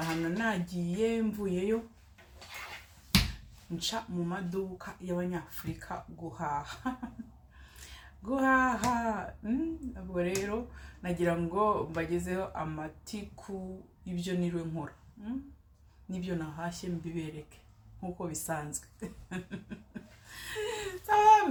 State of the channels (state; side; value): identical; both; correlation 1.00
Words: nagiye mvuyeyo nca mu maduka y'abanyafurika guhaha. Ubwo rero nagira ngo mbagezeho amatiku ibyo niriwe nkora, nibyo nahashye mbibereke nkuko bisanzwe.